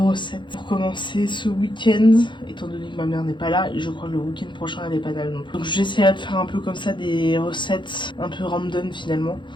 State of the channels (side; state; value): right; late; 0.23 ms